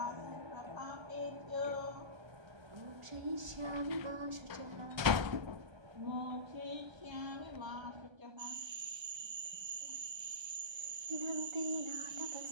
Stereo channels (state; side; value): late; left; 1.3 ms